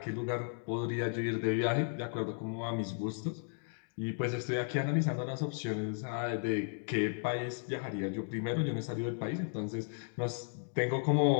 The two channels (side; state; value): right; silent; 55 dB below the other